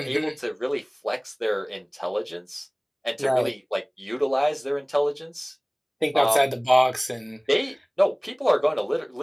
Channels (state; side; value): identical; both; correlation 1.00